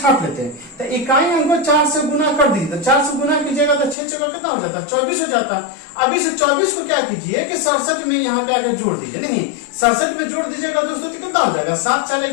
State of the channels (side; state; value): right; drops out; at 4.0 s